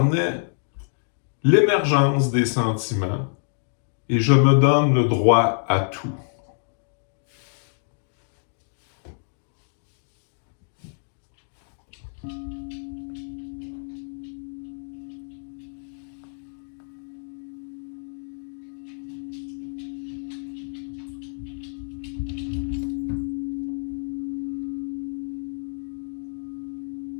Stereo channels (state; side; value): silent; right; digital silence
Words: l'émergence des sentiments et je me donne le droit à tout.